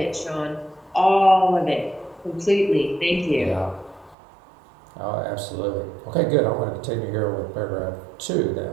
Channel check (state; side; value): drops out; left; at 4.2 s